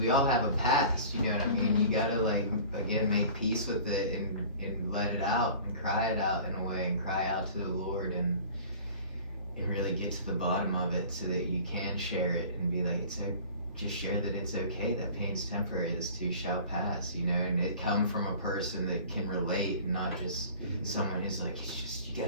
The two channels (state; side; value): inverted; both; correlation -0.43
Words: all have a past, you know what I mean? You gotta like, again, make peace with it and let it out and cry it out in a way, and cry out to the Lord, and really get to the bottom of it so that you can share it and be like, it's just share that it's okay, that pain's temporary, this too shall pass, you know, and it come from a person that can relate, and not just someone who's like, it's just, you